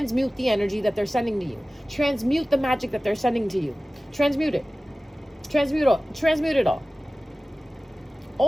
the energy that they're sending to you. Transmute the magic that they're sending to you. Transmute it. Transmute it all.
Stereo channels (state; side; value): normal; both; correlation 0.97